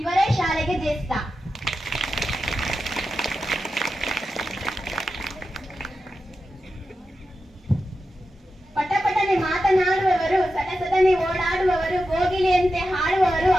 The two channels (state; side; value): normal; both; correlation 0.91